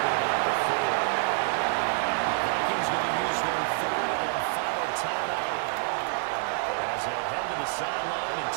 knock the 4. The Vikings going to use their 3rd and final timeout as they'll head to the sideline and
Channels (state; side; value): silent; left; 60 dB below the other